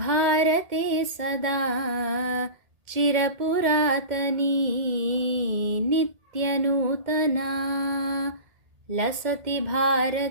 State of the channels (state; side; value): late; left; 1.8 ms